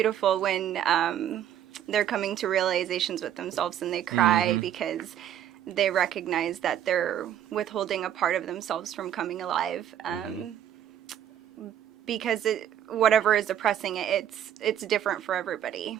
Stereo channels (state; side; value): quieter; left; 10.3 dB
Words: when they're coming to realizations with themselves and they cry because they recognize that they're withholding a part of themselves from coming alive. Because whatever is oppressing it, it's different for everybody.